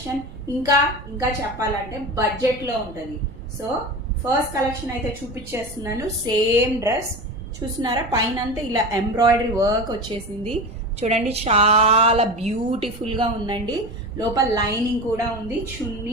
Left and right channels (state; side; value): noise; right; rumble, 16 dB below the sound